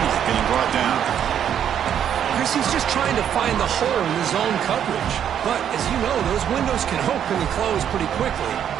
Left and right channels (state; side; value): quieter; left; 9.3 dB